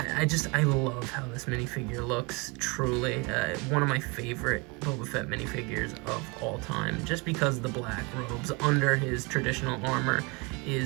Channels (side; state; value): left; quieter; 29.0 dB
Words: love how this minifigure looks, truly. One of my favorite Boba Fett minifigures of all time, just because the black robes under his traditional armor